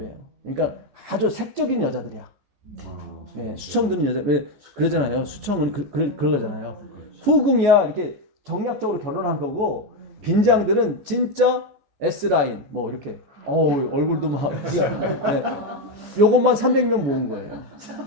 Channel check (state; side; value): late; left; 14 ms